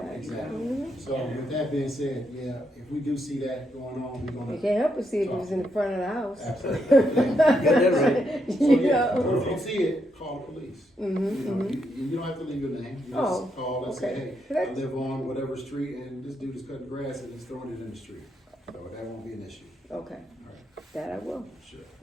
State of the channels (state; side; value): normal; both; correlation 0.79